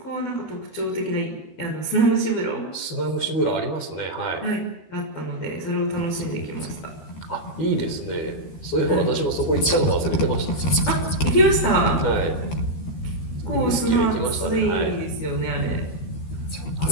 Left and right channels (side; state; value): right; late; 13 ms